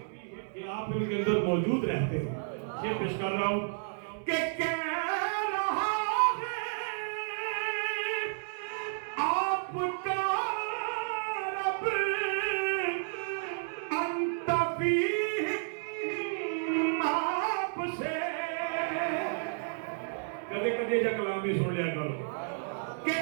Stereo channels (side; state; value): left; silent; 57 dB below the other